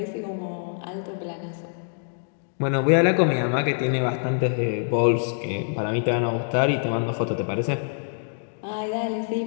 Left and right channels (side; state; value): right; silent; digital silence